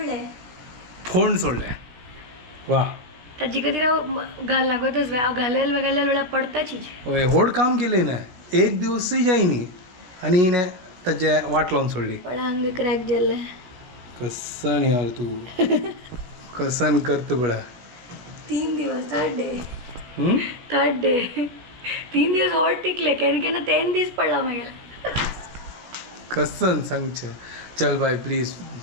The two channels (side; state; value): left; late; 16 ms